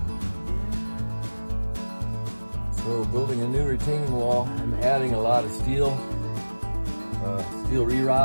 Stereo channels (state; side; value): inverted; both; correlation -1.00